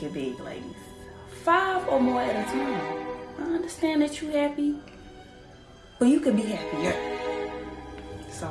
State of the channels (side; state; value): both; identical; correlation 1.00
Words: big, ladies. 5 or more at a time. I understand that you happy, but you could be happier. So